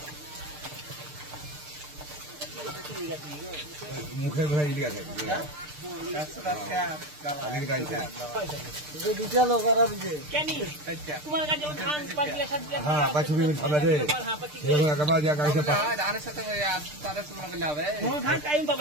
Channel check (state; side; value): late; left; 6.7 ms